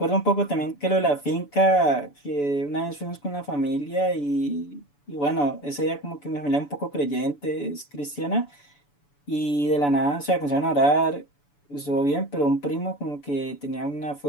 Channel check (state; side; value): late; right; 6.9 ms